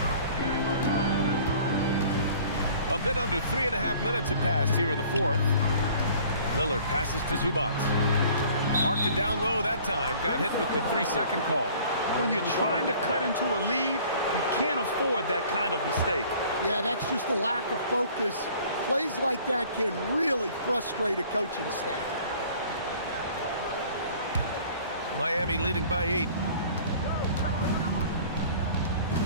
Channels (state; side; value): inverted; both; correlation -0.51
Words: A bit under 3.5 minutes have passed here in the 4th. Lillard passes to Zubac. Marked it down low that time. Got hit with the 3-second call. When you're trying to cut into a lead, you can't afford that kind of mistake. Yeah, that's just a lack of focus. Plays like that can really frustrate a coaching staff. Miami leading by 8.